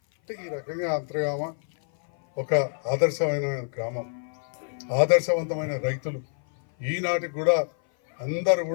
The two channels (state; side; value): silent; right; 57 dB below the other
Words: అంటే ఈ రకంగా అంతర్గామ ఒక ఆదర్శమైన గ్రామం, ఆదర్శవంతమైన రైతులు. ఈనాటికి కూడా అందరూ